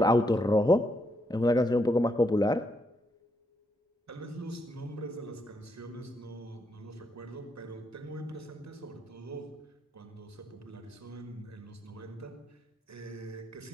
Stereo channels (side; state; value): both; normal; correlation 0.78